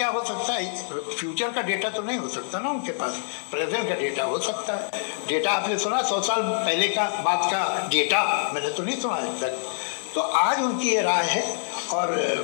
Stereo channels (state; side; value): silent; right; digital silence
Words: हो सकता है? फ्यूचर का डेटा तो नहीं हो सकता ना उनके पास, प्रेजेंट का डेटा हो सकता है। डेटा आपने सुना 100 साल पहले का बात का डेटा? मैंने तो नहीं सुना आज तक। तो आज उनकी ये राय है और